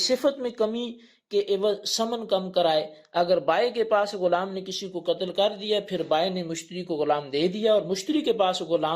میں کمی کے عوض ثمن کم کرائے۔ اگر بائع کے پاس غلام نے کسی کو قتل کر دیا، پھر بائع نے مشتری کو غلام دے دیا اور مشتری کے پاس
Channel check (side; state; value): both; identical; correlation 1.00